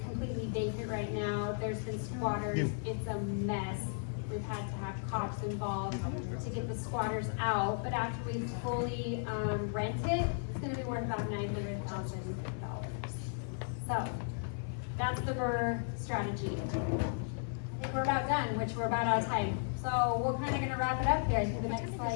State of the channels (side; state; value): right; silent; 54 dB below the other